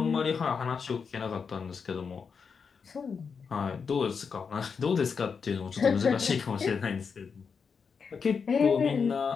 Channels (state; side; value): quieter; right; 5.8 dB